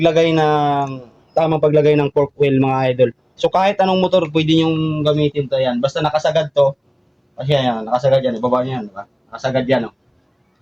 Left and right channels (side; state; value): both; identical; correlation 1.00